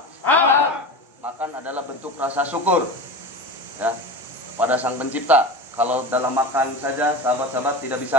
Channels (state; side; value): normal; both; correlation 0.29